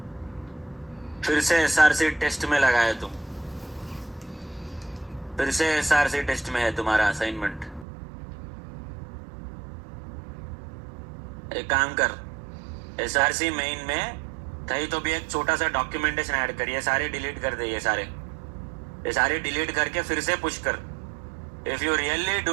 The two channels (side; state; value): left; drops out; at 7.9 s